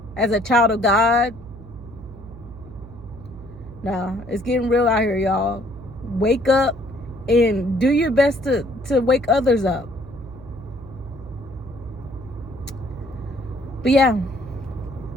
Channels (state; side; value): noise; right; hum, 17 dB below the sound